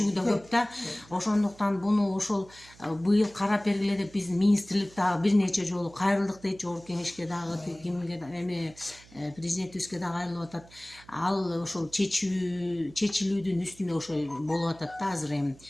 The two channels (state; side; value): noise; right; hum, 24 dB below the sound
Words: да көп да. Ошондуктан буну ошол быйыл карап бергиле деп биздин министрлик дагы бир нече жолу кайрылдык дейт, жогорку кеңешке дагы, кимге президентибизге дагы кайрылып атат. Ал ошол чечилүүдүн үстүнө ошо болуп атат да, азыр эми